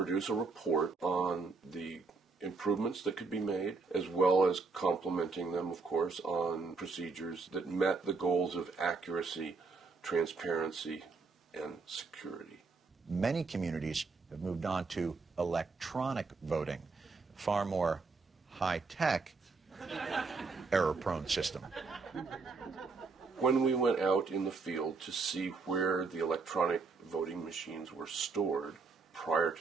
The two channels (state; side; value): quieter; left; 4.3 dB